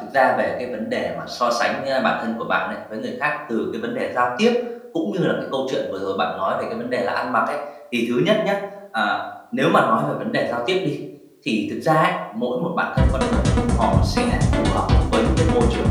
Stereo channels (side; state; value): both; identical; correlation 1.00